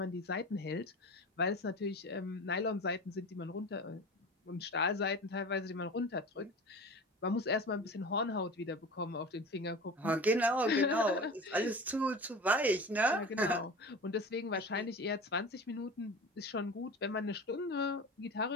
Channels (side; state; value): both; normal; correlation 0.34